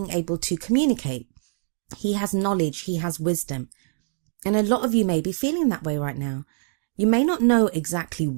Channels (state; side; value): silent; left; digital silence